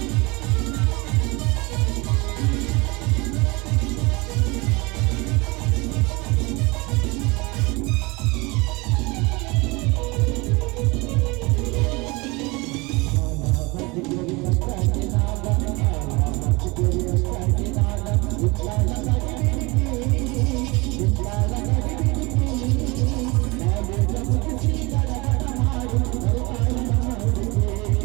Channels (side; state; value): left; quieter; 25.4 dB